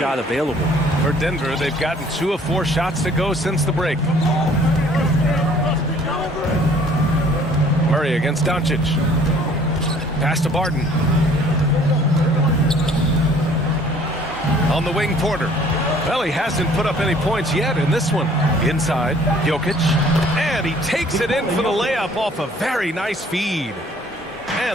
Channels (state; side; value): normal; both; correlation 0.56